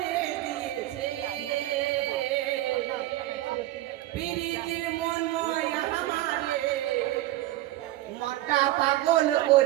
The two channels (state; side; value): quieter; left; 15.9 dB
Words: দিয়েছে, প্রীতির মনময় আমারে মনটা পাগল